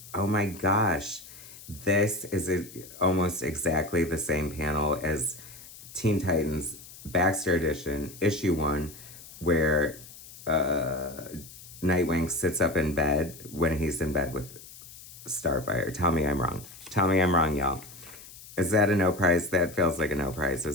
oh my gosh, this is almost exactly the same panel as Teen Titans Baxter Edition, issue 1, where Nightwing sits up in bed when he's in bed with Starfire. Tell me I'm wrong. Tell me I'm wrong, y'all. Is that a no prize? That feels like a no prize,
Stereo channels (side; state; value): left; noise; hiss, 17 dB below the sound